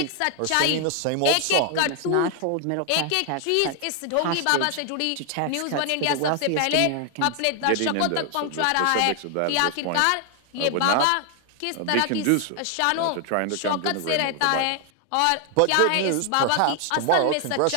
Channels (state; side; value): different; both; correlation 0.00